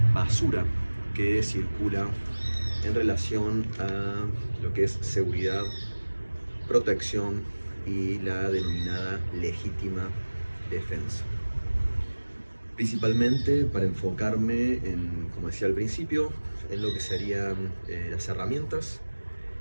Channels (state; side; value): inverted; both; correlation -1.00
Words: basura que circula en relación a lo que es seguridad, protección y la denominada legítima defensa. Principalmente para enfocarme en, como decía al principio, en lo que serían las herramientas